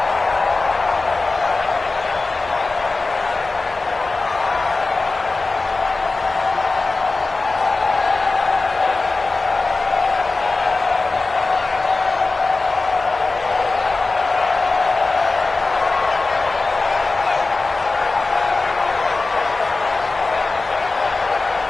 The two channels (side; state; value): right; quieter; 3.6 dB